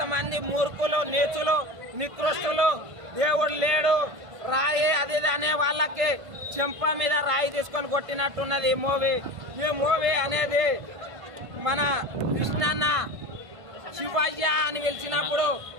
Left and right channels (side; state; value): left; late; 1.5 ms